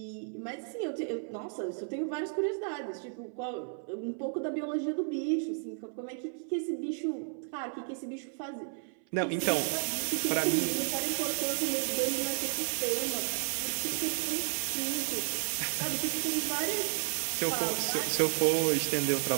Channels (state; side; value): silent; left; 56 dB below the other